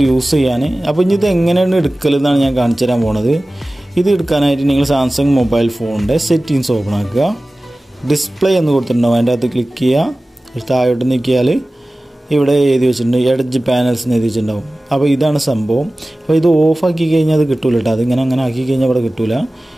യൂസ് ചെയ്യാൻ. അപ്പോൾ ഇനി ഇത് എങ്ങനെയാണ് എടുക്കലെന്നാണ് ഞാൻ കാണിച്ചു തരാൻ പോണത്. ഇത് എടുക്കാനായിട്ട് നിങ്ങൾ സാംസങ് മൊബൈൽ ഫോണിൻ്റെ സെറ്റിങ്സ് ഓപ്പൺ ആക്കുക. ഡിസ്പ്ലേ എന്ന് കൊടുത്തിട്ടുണ്ടാവും. അതിൻ്റെ അകത്ത് ക്ലിക്ക് ചെയ്യുക. താഴോട്ട് നീക്കിയാൽ ഇവിടെ എഴുതി വെച്ചിട്ടുണ്ട് എഡ്ജ് പാനൽസ് എന്ന് എഴുതി വെച്ചിട്ടുണ്ടാവും. അപ്പോൾ ഇതാണ് സംഭവം. അപ്പോൾ ഇത് ഓഫാക്കി കഴിഞ്ഞാൽ അത് കിട്ടൂല കേട്ടോ. അതിങ്ങനെ ആക്കി കഴിഞ്ഞാൽ ഇവിടെ കിട്ടൂല.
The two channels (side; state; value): both; normal; correlation 0.97